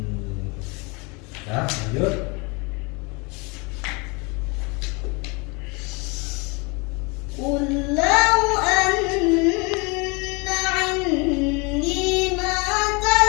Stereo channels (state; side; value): quieter; right; 29.2 dB